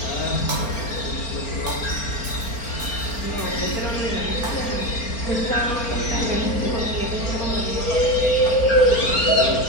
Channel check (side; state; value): right; late; 4.4 ms